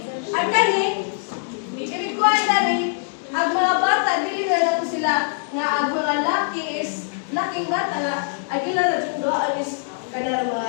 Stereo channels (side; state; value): right; silent; digital silence